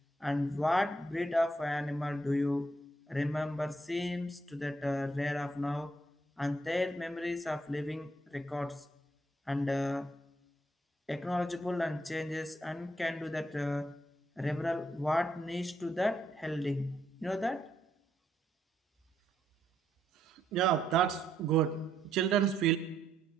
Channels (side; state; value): both; normal; correlation 0.75